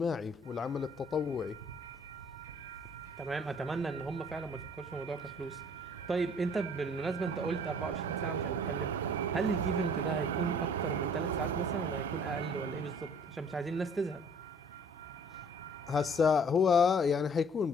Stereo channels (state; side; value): normal; both; correlation 0.55